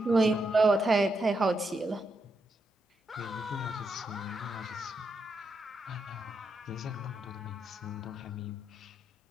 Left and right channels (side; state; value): both; normal; correlation 0.82